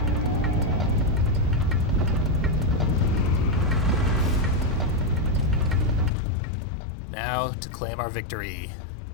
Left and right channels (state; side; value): drops out; right; at 6.1 s